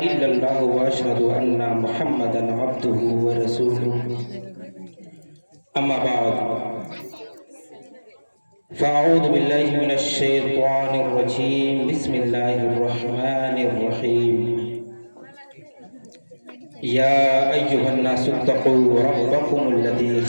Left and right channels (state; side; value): inverted; both; correlation -1.00